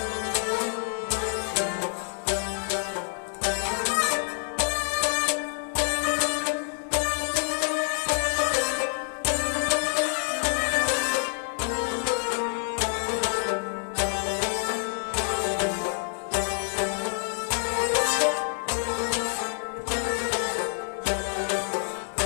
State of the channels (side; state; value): right; silent; 55 dB below the other